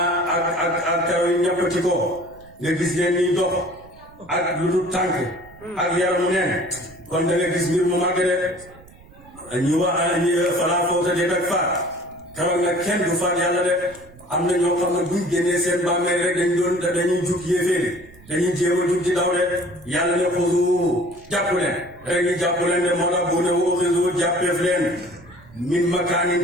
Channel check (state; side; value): noise; right; rumble, 23 dB below the sound